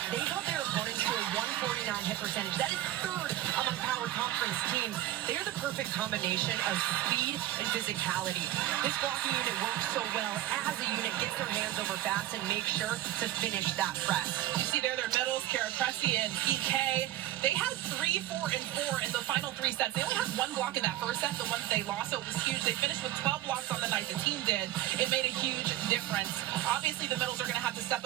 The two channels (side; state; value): left; quieter; 14.3 dB